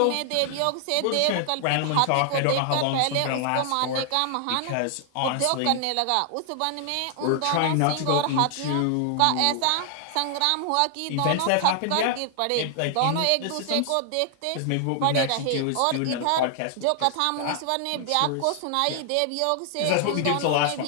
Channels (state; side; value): different; both; correlation 0.00